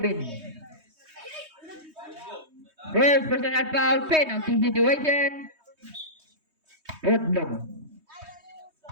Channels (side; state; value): left; late; 3.2 ms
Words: First personal foul, penalty situation. Outlaw.